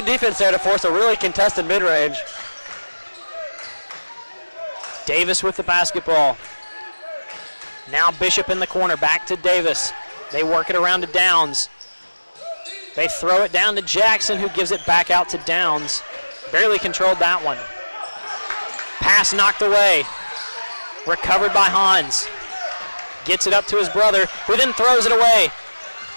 defense there to force a really contested mid-range. Davis with the basketball. Now Bishop in the corner. Back to Davis. They work it around to Downs. They throw it down to Jackson, who gives it back out to Downs. Barely controlled that one. Pass knocked away. Recovered by Hans. Gets it up to his brother, who then throws it away.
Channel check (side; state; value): both; inverted; correlation -1.00